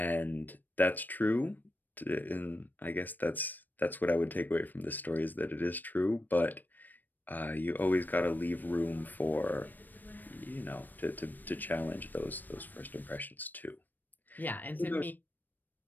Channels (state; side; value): late; right; 0.089 ms